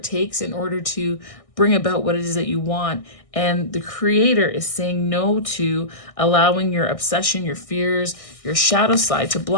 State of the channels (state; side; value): late; right; 1.6 ms